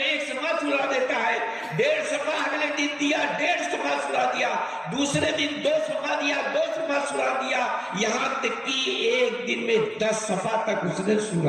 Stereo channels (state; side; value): identical; both; correlation 1.00